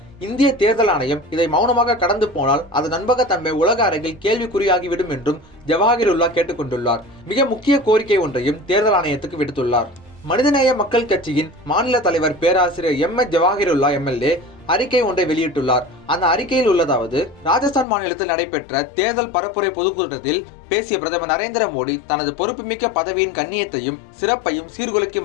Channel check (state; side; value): drops out; right; at 17.9 s